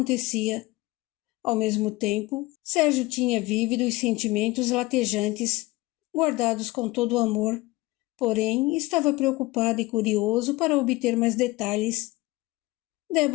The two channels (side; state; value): right; quieter; 20.6 dB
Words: Ao mesmo tempo, Sérgio tinha vívidos sentimentos latejantes, guardados com todo o amor, porém estava preocupado e curioso para obter mais detalhes.